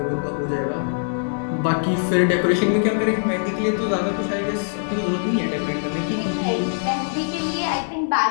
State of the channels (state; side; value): silent; right; 64 dB below the other